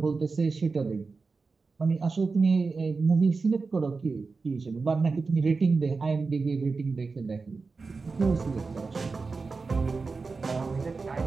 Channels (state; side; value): quieter; left; 4.3 dB